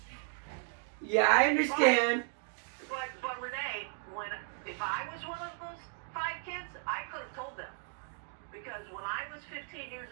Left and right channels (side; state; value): left; silent; 54 dB below the other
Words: Yeah, I understand. But Renee, if I was one of those 5 kids, I could have told them. Because when I was 15 years